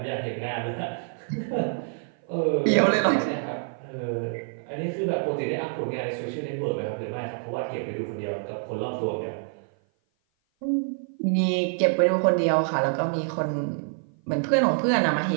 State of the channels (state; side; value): silent; left; 55 dB below the other